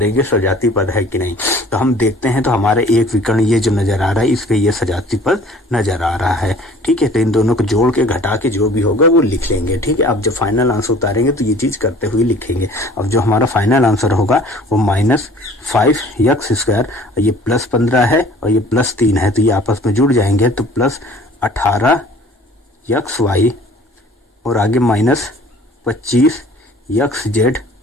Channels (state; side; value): normal; both; correlation 0.50